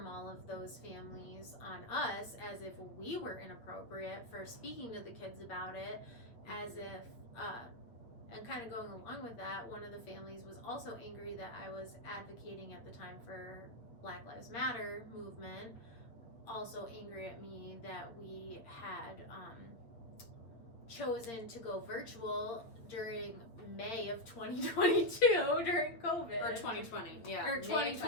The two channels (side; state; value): right; late; 8.4 ms